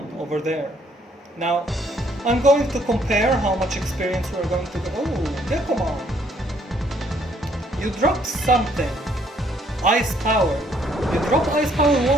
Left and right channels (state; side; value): normal; both; correlation 0.66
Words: over there. Now, I'm going to compare how much experience we're going to get. Oh, Digimon! You dropped something. Ice Power. You dropped Ice Power